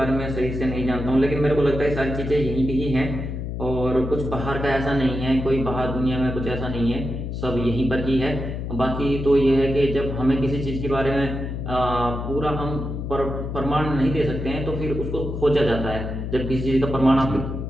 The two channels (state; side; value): noise; left; hum, 5 dB below the sound